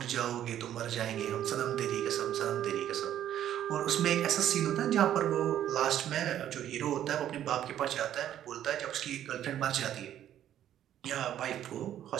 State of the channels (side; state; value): left; quieter; 11.2 dB